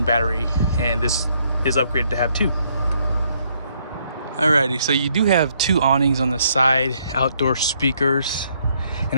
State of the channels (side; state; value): both; inverted; correlation -0.70